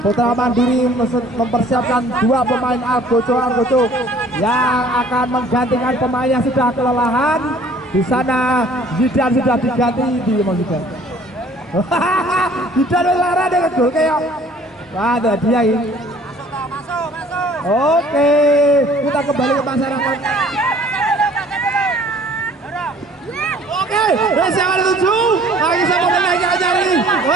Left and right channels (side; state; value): both; normal; correlation 0.54